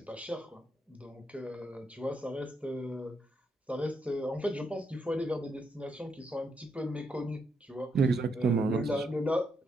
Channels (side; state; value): both; normal; correlation 0.79